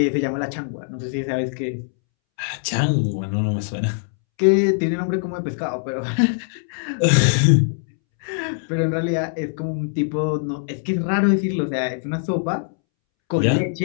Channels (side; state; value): right; silent; 64 dB below the other